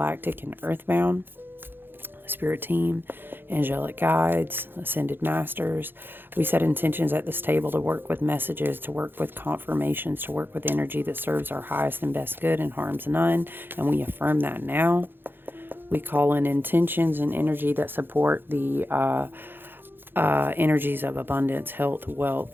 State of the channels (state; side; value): late; left; 0.10 ms